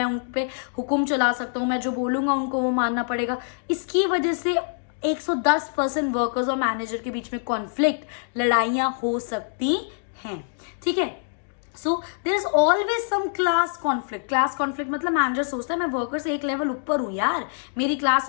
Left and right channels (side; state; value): right; silent; digital silence